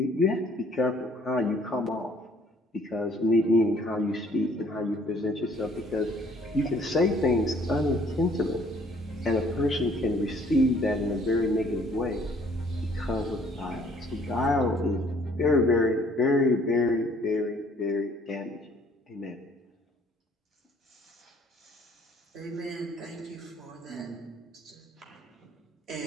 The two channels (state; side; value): normal; both; correlation 0.60